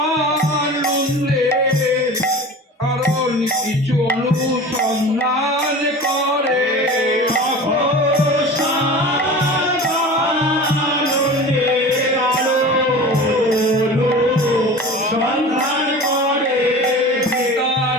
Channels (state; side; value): normal; both; correlation 0.36